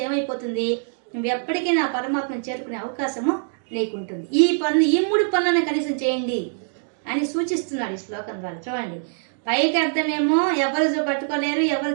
ఏమైపోతుంది, నువ్వు ఎప్పటికైనా ఆ పరమాత్మను చేరుకునే అవకాశము నీకుంటుంది. ఈ 3 పనులను కనీసం చేయండి అని సూచిస్తున్నాడు ఈ శ్లోకం ద్వారా. చూడండి, పైకి అర్థమేమో ఎవరు పట్టుకోలేరు, ఎవరు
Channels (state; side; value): silent; left; digital silence